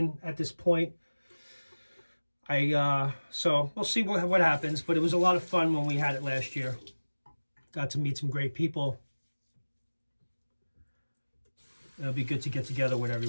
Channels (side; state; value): both; inverted; correlation -1.00